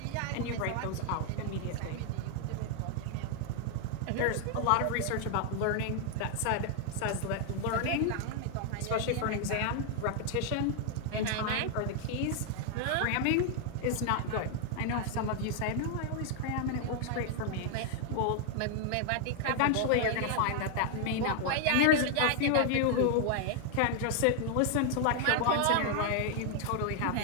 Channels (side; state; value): both; different; correlation 0.00